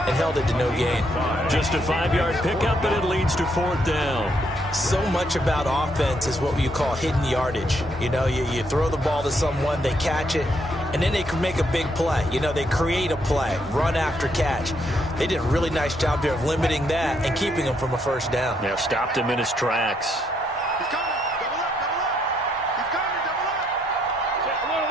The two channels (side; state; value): both; normal; correlation 0.74